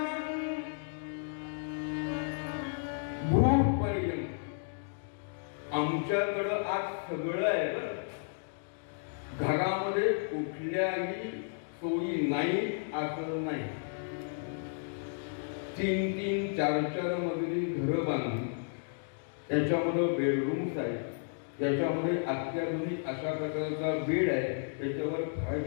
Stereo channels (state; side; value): silent; right; digital silence